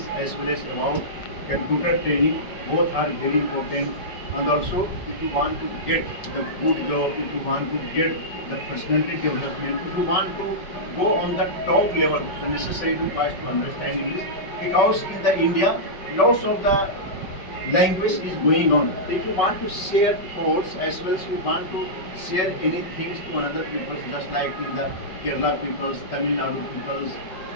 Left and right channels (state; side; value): late; right; 5.2 ms